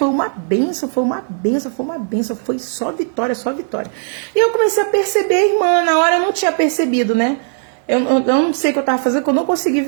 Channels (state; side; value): silent; left; digital silence